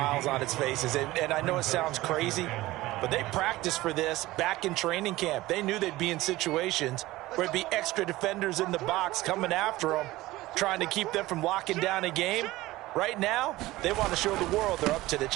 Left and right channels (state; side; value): quieter; left; 17.9 dB